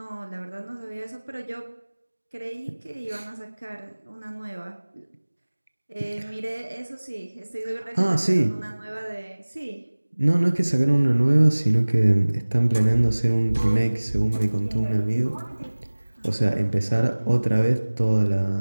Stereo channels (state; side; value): inverted; both; correlation -1.00